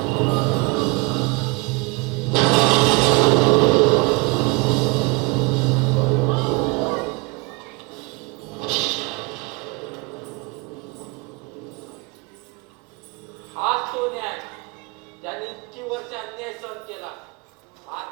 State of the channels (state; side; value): quieter; left; 26.7 dB